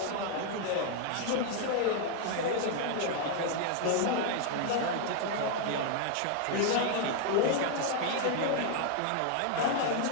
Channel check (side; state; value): both; different; correlation 0.00